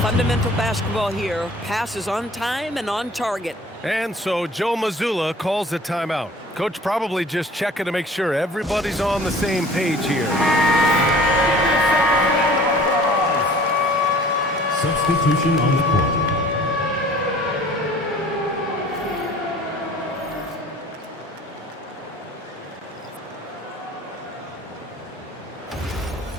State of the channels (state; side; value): normal; both; correlation 0.49